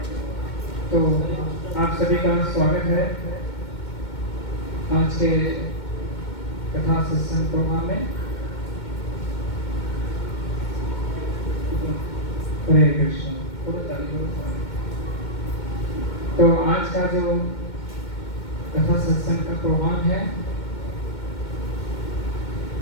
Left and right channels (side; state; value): right; late; 2.2 ms